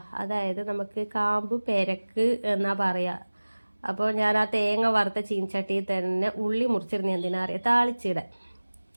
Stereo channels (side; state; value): both; inverted; correlation -1.00